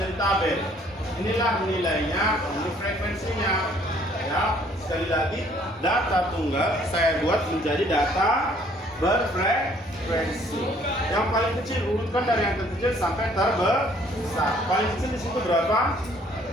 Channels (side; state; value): both; normal; correlation 0.61